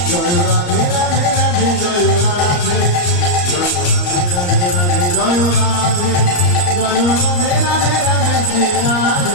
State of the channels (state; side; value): late; right; 34 ms